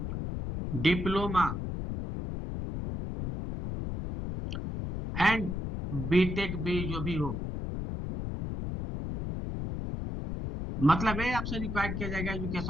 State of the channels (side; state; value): left; noise; rumble, 4 dB below the sound